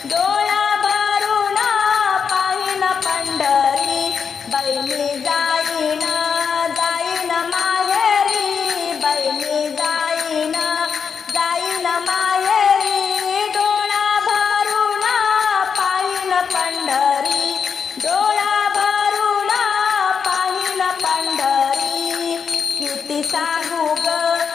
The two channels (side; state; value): right; quieter; 6.4 dB